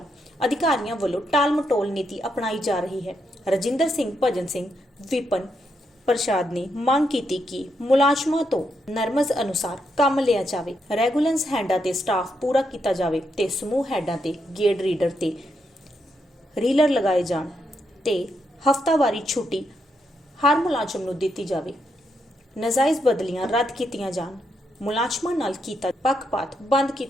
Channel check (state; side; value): normal; both; correlation 0.80